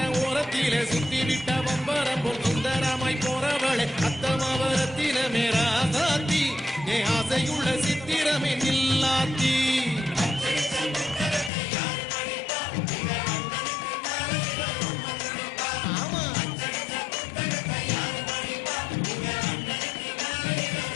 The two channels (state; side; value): drops out; right; at 11.5 s